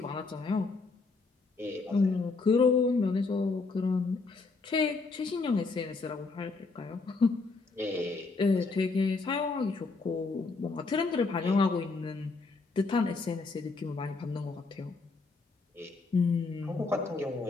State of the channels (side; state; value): right; quieter; 4.0 dB